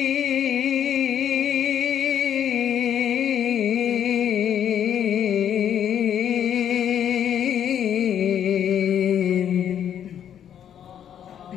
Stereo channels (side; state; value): right; quieter; 9.5 dB